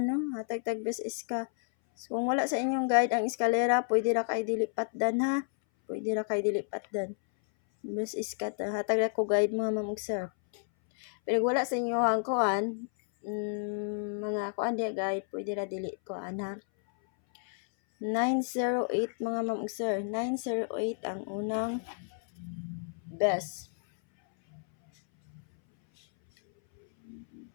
best is ka. So, kung wala sa inyong guide ang eskalera, pwede ra kay dilipatdan ha. Pwede ra kay dilipatdan. Best is ka ta. Hatag ra ko guide mga ma'am ug sir. Pero wala sa inyo ang kuan, mga kuan dia guide, pwede ra dili kuan ha. 908 mga ma'am ug sir. 908 ang unang best.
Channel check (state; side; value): silent; right; 57 dB below the other